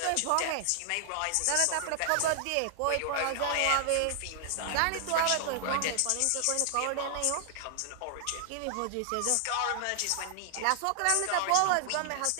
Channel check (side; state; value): both; different; correlation 0.00